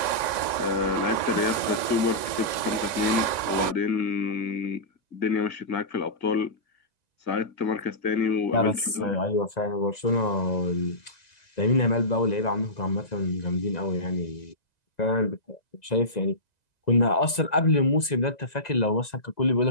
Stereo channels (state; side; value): late; right; 2.0 ms